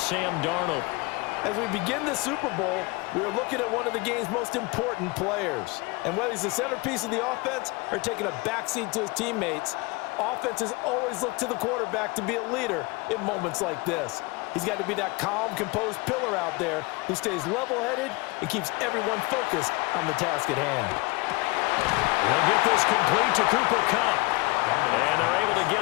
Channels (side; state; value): right; quieter; 25.2 dB